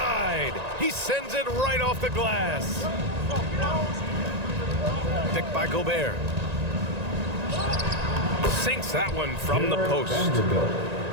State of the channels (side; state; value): left; late; 1.9 ms